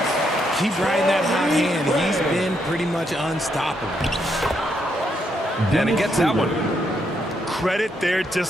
Keep riding that hot hand. He's been pretty much unstoppable. And he gets that one. Credit their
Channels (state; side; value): normal; both; correlation 0.77